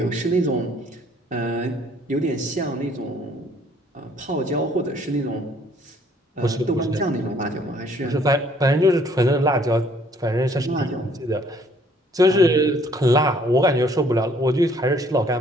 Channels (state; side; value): normal; both; correlation 0.61